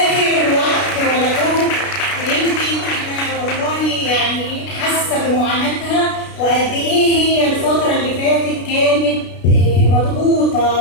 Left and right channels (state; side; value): late; right; 33 ms